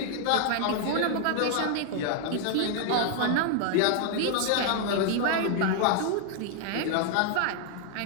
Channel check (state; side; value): different; both; correlation 0.00